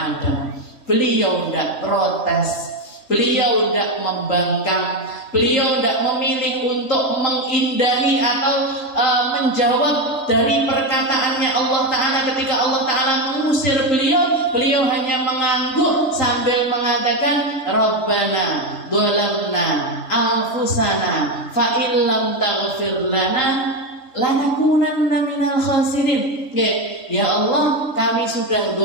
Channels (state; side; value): late; right; 3.8 ms